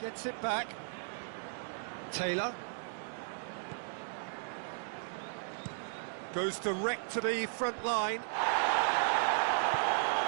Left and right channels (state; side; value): silent; left; digital silence